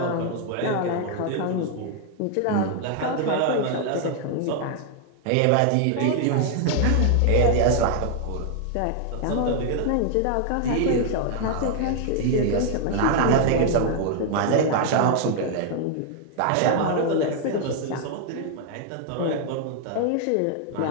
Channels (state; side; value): different; both; correlation 0.00